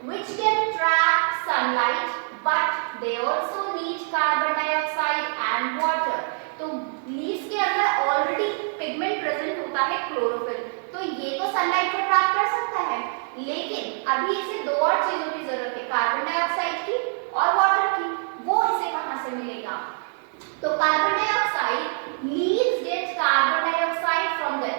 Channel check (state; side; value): silent; left; 56 dB below the other